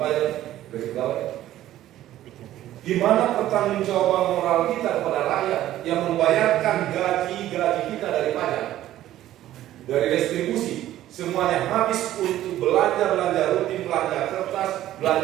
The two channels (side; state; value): left; quieter; 13.5 dB